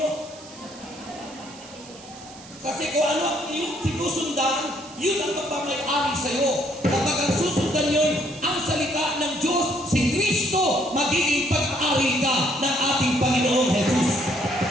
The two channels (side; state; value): right; noise; hiss, 19 dB below the sound